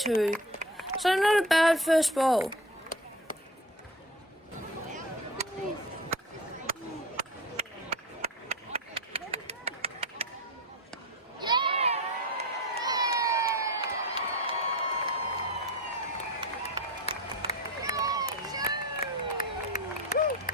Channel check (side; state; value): both; normal; correlation 0.32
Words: So not a bad first ball.